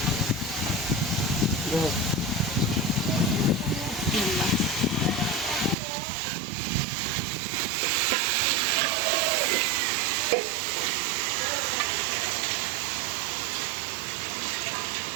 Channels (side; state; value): left; drops out; at 5.8 s